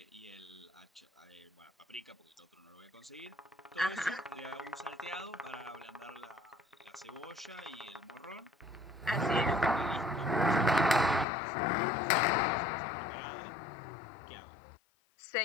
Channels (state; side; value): drops out; right; at 11.2 s